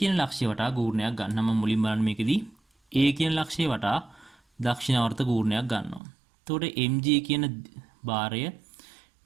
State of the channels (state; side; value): drops out; left; at 6.0 s